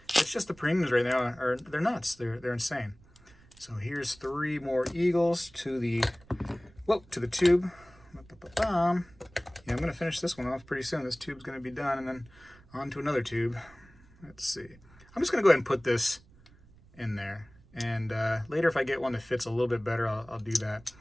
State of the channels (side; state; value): right; noise; rumble, 26 dB below the sound